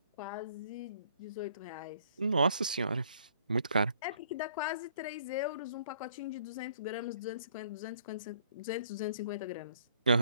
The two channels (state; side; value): inverted; both; correlation -0.61